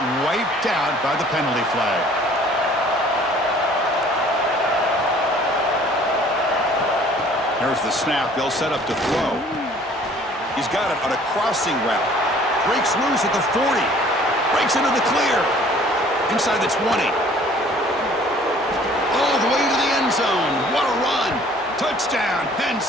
wiped out by the penalty flag. There's the snap. They'll set up to throw. He's got it on a crossing route. Breaks loose at the 40. Breaks into the clear. Inside the 20. All the way to the end zone. What a run. Touchdown, Penn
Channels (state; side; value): normal; both; correlation 0.54